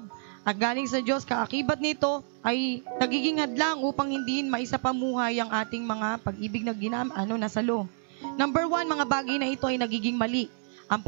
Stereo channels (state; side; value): silent; left; digital silence